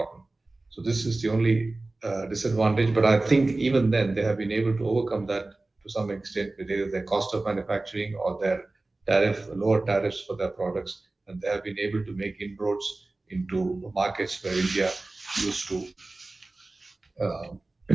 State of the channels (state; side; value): quieter; left; 3.1 dB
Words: So this is the only disadvantage. But I think even then they have been able to overcome that to some extent with either their cost of manufacturing or their lower tariffs for their products, and they have been able to make inroads into markets where India used to